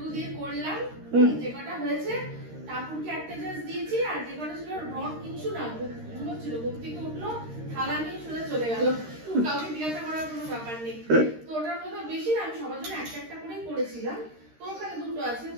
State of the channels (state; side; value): late; left; 13 ms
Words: দিয়ে করলাম, যে কটা হয়েছে। টাপুরকে একটা জাস্ট দিয়েছি, আর যে কটা ছিল রড কিছু না ঘুমোচ্ছিল, ঘুম থেকে উঠলো, থালা নিয়ে সোজা চলে গেল, কাউকে জিজ্ঞাসা করার কোনো ব্যাপার নেই। তো ওটার মতো বেশি না, আমি সবার জন্য একটা একটা করেই করেছিলাম। তো ওখানে দুটো আছে,